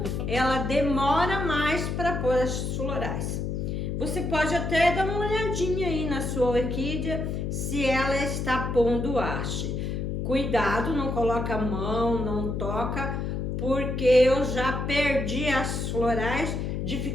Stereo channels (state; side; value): noise; left; hum, 2 dB below the sound